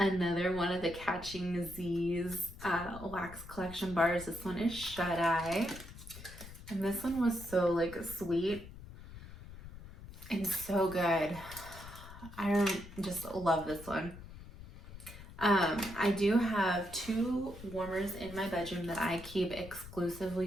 one of the Catching Z's wax collection bars. This one is Shut Eye, and this one was so like sweet and so good. I just love this one. I do have 2 warmers in my bedroom that I keep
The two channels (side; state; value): left; noise; rumble, 15 dB below the sound